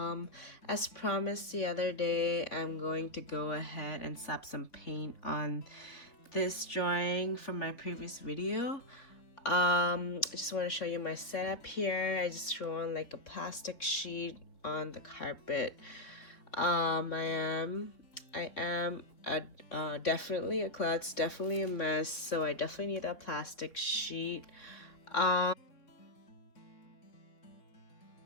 As promised the other day, I'm going to go ahead and slap some paint on this drawing from my previous video. I just want to show you my setup here. I just threw on like a plastic sheet on the carpet. I am definitely a klutz, definitely a mess, so I definitely need a plastic sheet.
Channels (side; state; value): right; late; 3.6 ms